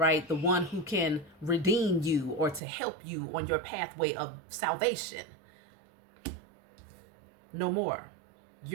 The one who can redeem you or to help you on your pathway of salvation. No more.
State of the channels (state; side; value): drops out; left; at 2.6 s